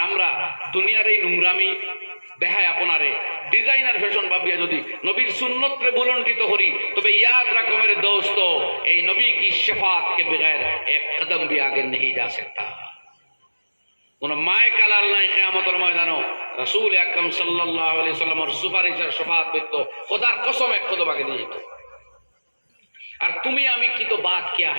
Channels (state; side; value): inverted; both; correlation -1.00